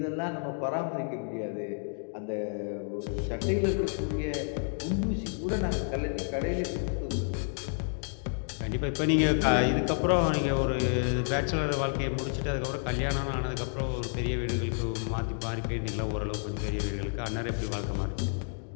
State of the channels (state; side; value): silent; right; 58 dB below the other